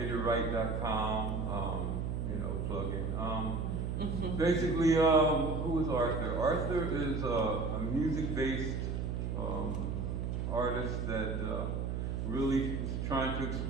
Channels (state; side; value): noise; right; hum, 1 dB below the sound